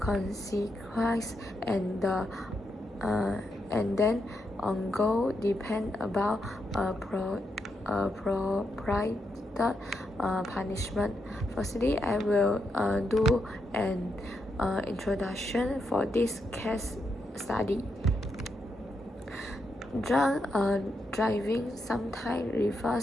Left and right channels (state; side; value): normal; both; correlation 0.82